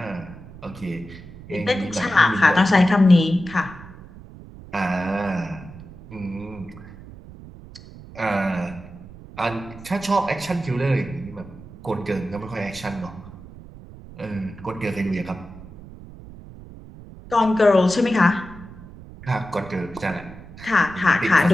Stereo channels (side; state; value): right; noise; rumble, 17 dB below the sound